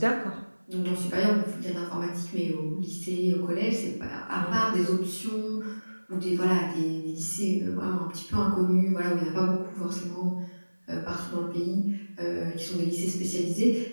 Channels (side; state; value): both; inverted; correlation -1.00